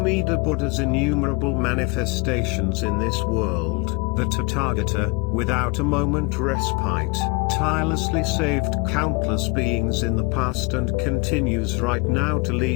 Buddha's innumerable manifestations in this world, the Tathagata, without a moment respite, tirelessly saved countless beings in the past and continues right now to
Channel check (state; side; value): quieter; right; 26.7 dB